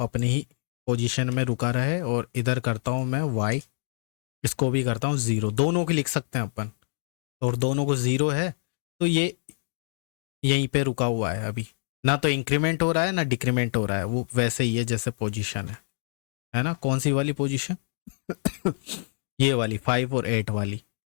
ही पोजीशन में रुका रहे। और इधर करता हूँ मैं y, इसको भी करता हूँ 0। दोनों की लिख सकते हैं अपन, और दोनों को 0 है तो ये यहीं पे रुका हुआ है अभी, ना तो इंक्रीमेंट हो रहा है ना डिक्रीमेंट हो रहा है, वो वैसे ही है जैसे पोजीशन है ना। कौन सी वाली पोजीशन ये वाली 5 और 8 वाली।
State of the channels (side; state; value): right; silent; digital silence